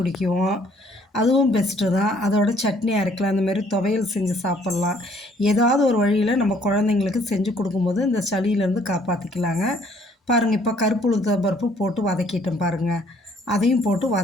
அதுவும் பெஸ்ட்டு தான். அதோட சட்னி அரைக்கலாம், அந்தமாரி துவையல் செஞ்சு சாப்பிட்லாம். ஏதாவது ஒரு வழியில் நம்ம குழந்தைங்களுக்கு செஞ்சு கொடுக்கும்போது இந்த சளியிலேருந்து காப்பாற்றிக்கலாங்க. பாருங்கள், இப்போ கருப்பு உளுத்தம் பருப்பு போட்டு வதக்கிட்டேன் பாருங்கள். அதையும் போட்டு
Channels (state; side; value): normal; both; correlation 0.62